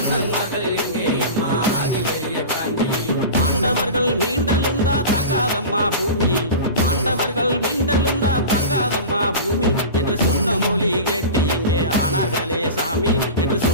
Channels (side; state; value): both; inverted; correlation -0.31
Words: எங்கே அம்மா அதிபெரிய காண்டி பாண்டவர்கள் மீண்டெழுந்தா தாங்காதம்மா பூமி பாண்டவர்கள் மீண்டெழுந்தா தாங்காதம்மா பூமி என்று சொன்ன மொழி கேட்டு எங்கே ஆனார்களே சாமி என்று